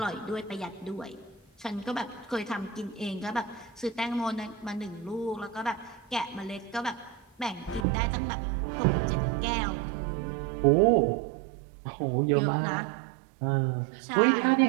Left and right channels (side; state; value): left; drops out; at 7.9 s